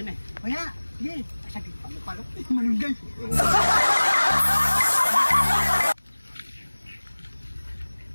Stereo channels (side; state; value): both; inverted; correlation -1.00